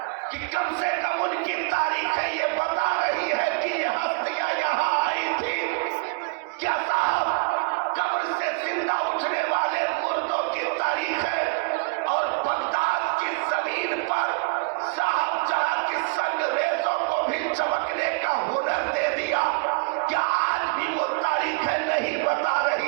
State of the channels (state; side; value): quieter; left; 34.1 dB